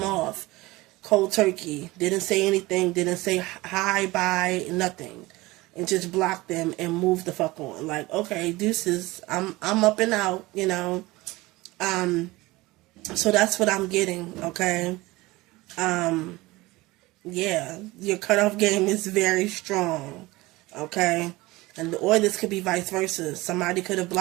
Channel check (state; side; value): quieter; left; 20.5 dB